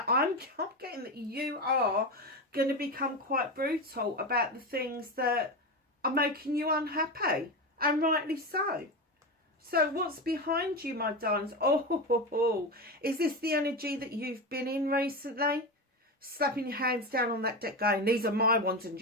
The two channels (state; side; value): normal; both; correlation 0.19